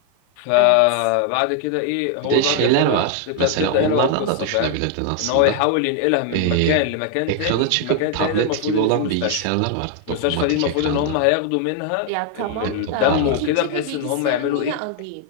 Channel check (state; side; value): different; both; correlation 0.00